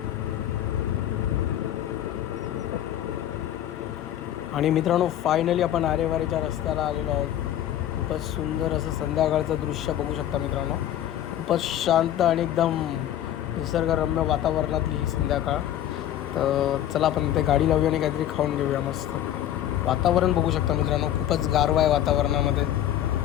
आणि मित्रांनो फायनली आपण आरेवारीच्या रस्त्याला आलेलो आहोत. खूपच सुंदर असं संध्याकाळचं दृश्य बघू शकता मित्रांनो. खूपच शांत आणि एकदम निसर्गरम्य वातावरणातली ही संध्याकाळ. तर चला आपण इथे गाडी लावूया आणि काहीतरी खाऊन घेऊया मस्त. वातावरण बघू शकता मित्रांनो, खूपच गारवा आहे वातावरणामध्ये.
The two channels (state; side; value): quieter; right; 11.7 dB